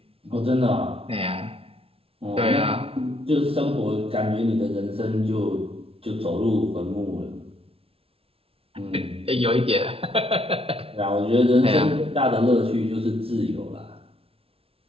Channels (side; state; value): left; late; 0.27 ms